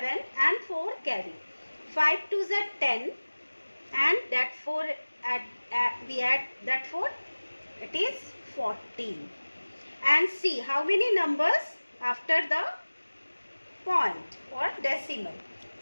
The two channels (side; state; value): both; inverted; correlation -1.00